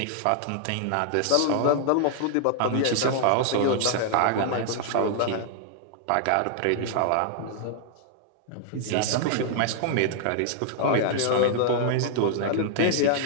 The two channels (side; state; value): both; different; correlation 0.00